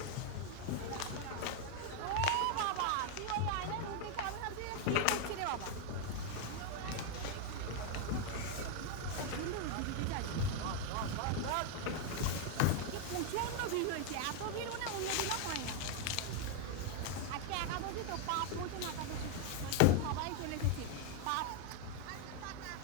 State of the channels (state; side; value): different; both; correlation 0.00